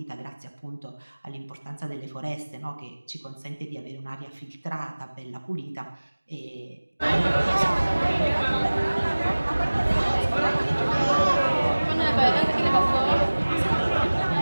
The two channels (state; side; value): inverted; both; correlation -1.00